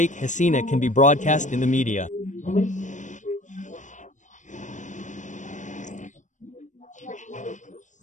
Hasina can be broadcast in the media.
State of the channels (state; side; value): late; right; 0.36 ms